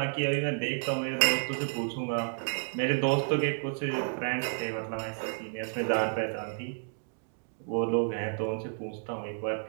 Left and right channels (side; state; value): left; silent; 55 dB below the other